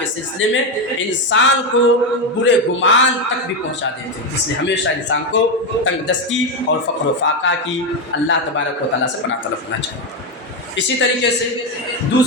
سلسلے میں انسان کو برے گمان تک بھی پہنچا دیتے ہیں۔ اس لیے ہمیشہ انسان کو تنگ دستی اور فقر و فاقہ کی اللہ تبارک و تعالیٰ سے پناہ طلب کرنا چاہیے۔ اسی طریقے سے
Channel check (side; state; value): both; normal; correlation 0.09